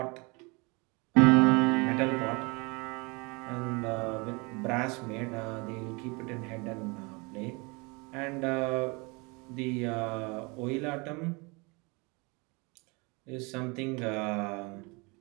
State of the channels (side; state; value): left; quieter; 28.4 dB